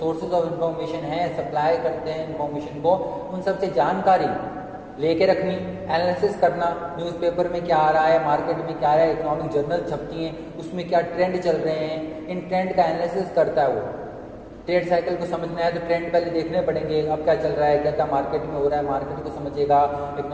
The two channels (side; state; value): both; identical; correlation 1.00